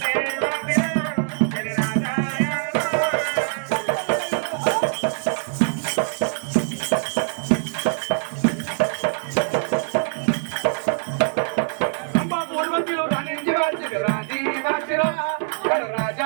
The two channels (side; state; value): left; silent; 58 dB below the other